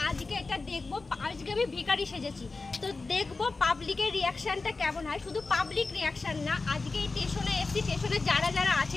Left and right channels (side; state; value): right; quieter; 3.8 dB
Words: আজকে এটা দেখবো। আজকে আমি ভিখারি সেজেছি, তো দেখবো পাবলিকের রিয়াকশনটা কেমন হয়। শুধু পাবলিক রিয়াকশন না, আজকে এই স্টেশনে এসেছি, স্টেশনে যারা যারা আছে